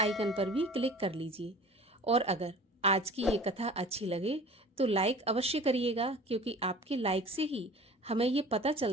पर भी क्लिक कर लीजिए। और अगर आज की ये कथा अच्छी लगे तो लाइक अवश्य करिएगा, क्योंकि आपके लाइक से ही हमें ये पता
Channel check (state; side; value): normal; both; correlation 0.43